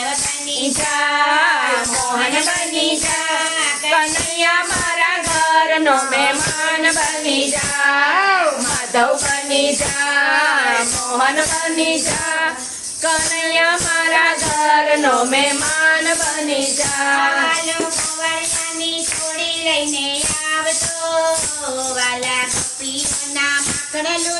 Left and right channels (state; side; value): identical; both; correlation 1.00